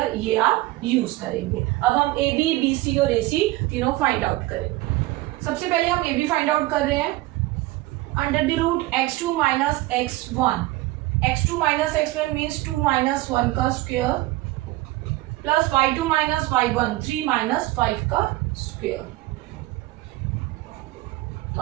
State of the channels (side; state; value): left; quieter; 18.5 dB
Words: ये आप यूज करेंगे। अब हम ए बी, बी सी और ए सी तीनों फाइंड आउट करेंगे। सबसे पहले हम ए बी फाइंड आउट कर रहे हैं। Under the root x2 minus x1, x2 minus x1 means 2 minus 1 का square plus y2 minus y1 3 minus 5 का स्क्वायर। तो